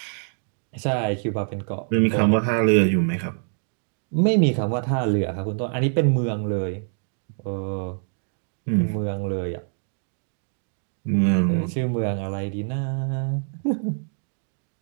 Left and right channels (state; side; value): silent; left; digital silence